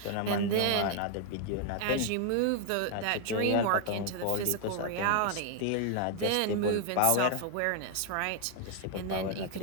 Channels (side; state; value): both; different; correlation 0.00